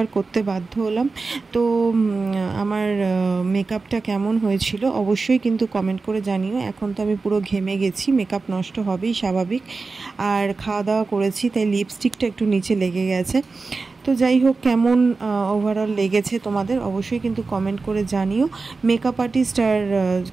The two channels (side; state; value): left; quieter; 4.1 dB